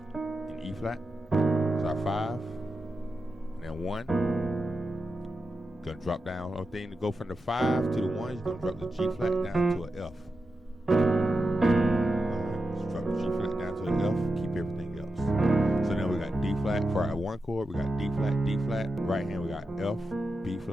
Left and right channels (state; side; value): normal; both; correlation 0.89